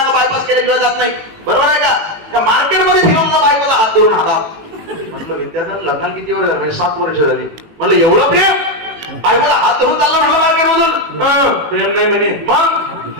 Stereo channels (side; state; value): left; late; 18 ms